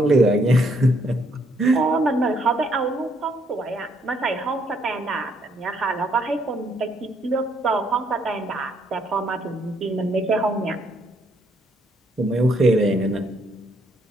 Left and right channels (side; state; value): both; normal; correlation 0.70